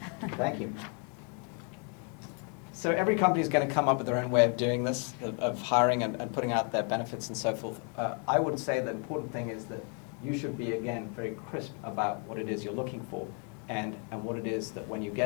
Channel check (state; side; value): quieter; right; 39.0 dB